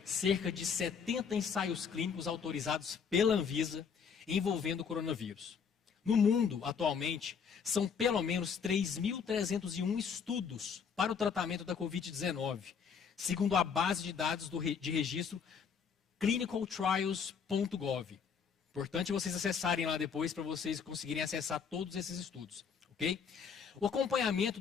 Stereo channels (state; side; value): quieter; right; 6.5 dB